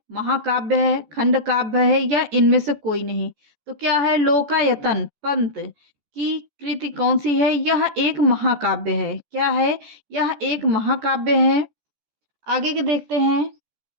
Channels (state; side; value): late; left; 14 ms